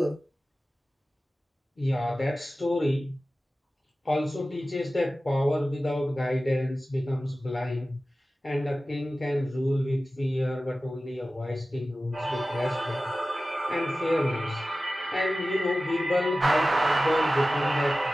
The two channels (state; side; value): normal; both; correlation 0.95